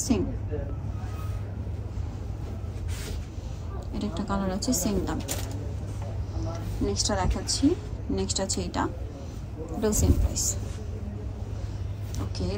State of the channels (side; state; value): both; identical; correlation 1.00